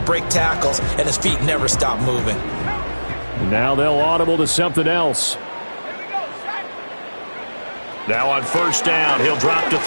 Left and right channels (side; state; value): both; inverted; correlation -1.00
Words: tackles and his feet never stop moving? Now they'll audible to something else. Now on first down, he'll drop to